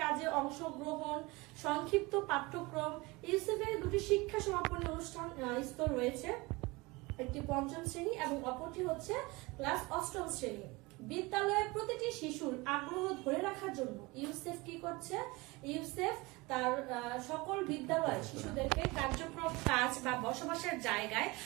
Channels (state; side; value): quieter; left; 23.7 dB